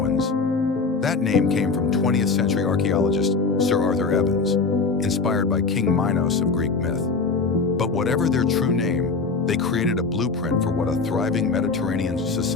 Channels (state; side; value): quieter; right; 4.4 dB